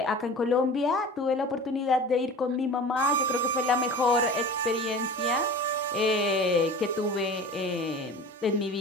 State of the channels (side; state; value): both; normal; correlation 0.37